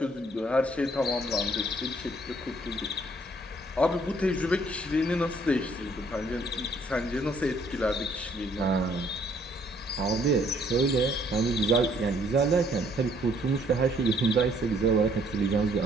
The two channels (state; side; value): normal; both; correlation 0.63